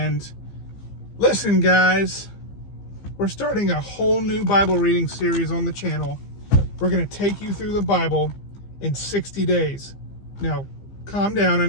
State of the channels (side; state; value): right; late; 15 ms